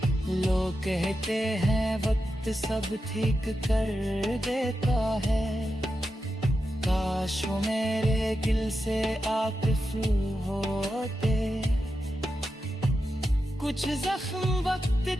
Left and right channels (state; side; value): normal; both; correlation 0.89